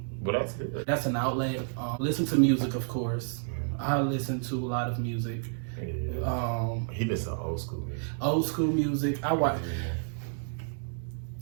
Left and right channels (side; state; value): left; silent; digital silence